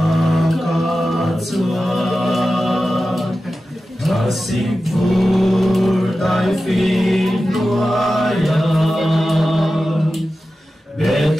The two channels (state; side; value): normal; both; correlation 0.93